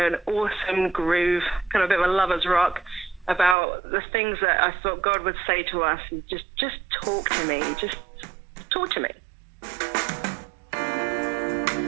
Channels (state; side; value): drops out; left; at 3.6 s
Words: awesome groove, kind of a bit of a lover's rock about the things that I thought God would say to us. Just talk to me. Just talk to me.